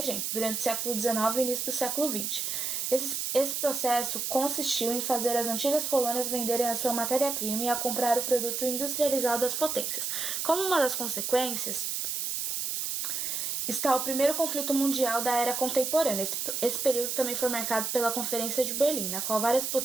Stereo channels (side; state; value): right; noise; hiss, 2 dB below the sound